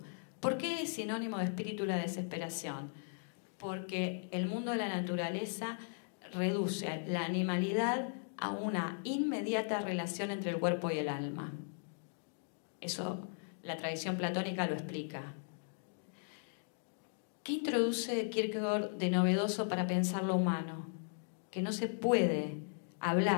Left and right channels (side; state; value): right; silent; digital silence